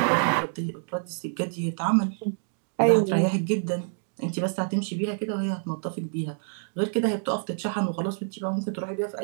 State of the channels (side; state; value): left; silent; digital silence